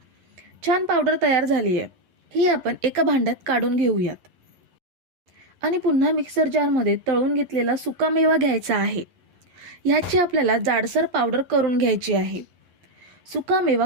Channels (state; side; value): late; left; 11 ms